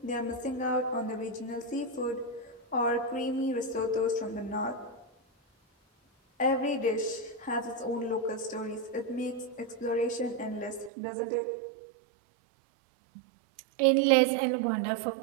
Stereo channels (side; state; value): left; drops out; at 10.9 s